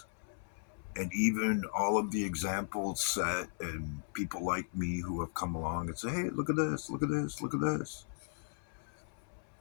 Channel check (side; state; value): right; silent; 54 dB below the other